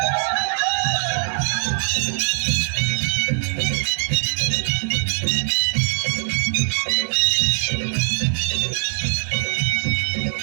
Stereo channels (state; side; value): silent; left; digital silence